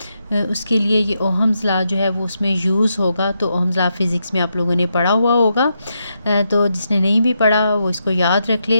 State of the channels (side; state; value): both; inverted; correlation -0.83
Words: उसके लिए ये ओहम्स लॉ जो है वो उसमें यूज़ होगा। तो ओहम्स लॉ फिज़िक्स में आप लोगों ने पढ़ा हुआ होगा, तो जिसने नहीं भी पढ़ा वो इसको याद रख